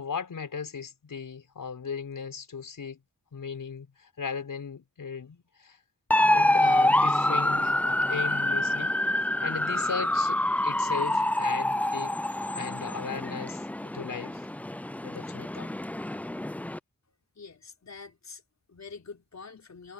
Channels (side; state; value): both; normal; correlation 0.75